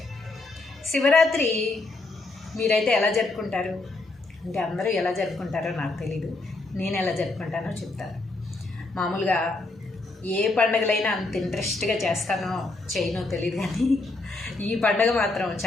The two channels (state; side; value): quieter; right; 3.2 dB